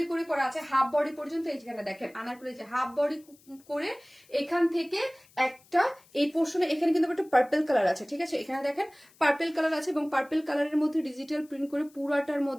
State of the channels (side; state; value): left; noise; hiss, 29 dB below the sound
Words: করে করা আছে হাফ বডি পর্যন্ত। এইখানে দেখেন আনারকলি যে হাফ বডি করে এখান থেকে একটা এই পোর্শনে এখানে কিন্তু একটা পার্পল কালার আছে, ঠিক আছে, এখানে দেখেন পার্পল কালার আছে এবং পার্পল কালারের মধ্যে ডিজিটাল প্রিন্ট করে পুরাটার